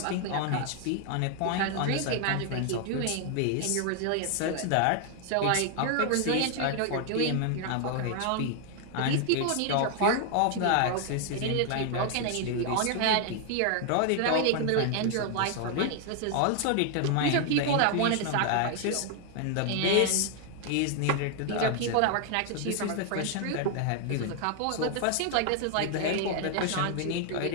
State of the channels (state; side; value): different; both; correlation 0.00